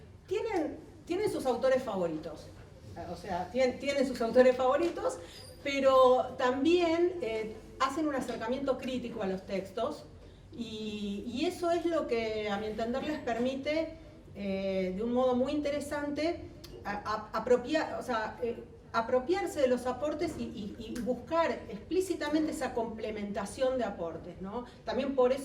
Tienen sus autores favoritos, o sea, tienen sus autores favoritos, pero también hacen un acercamiento crítico a los textos, y eso es lo que, a mi entender, les permite de un modo muy interesante apropiarse de los aportes y buscar explícitamente esa complementación de aportes, ¿no? También por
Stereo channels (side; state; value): both; identical; correlation 1.00